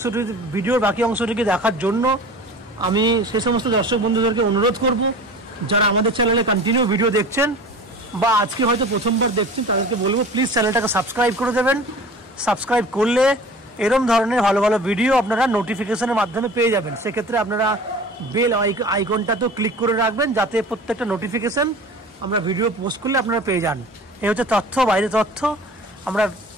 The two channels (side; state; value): both; normal; correlation 0.40